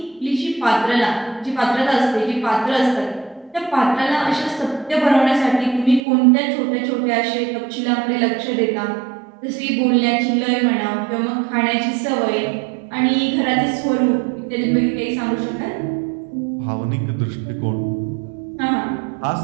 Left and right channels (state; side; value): drops out; left; at 6.0 s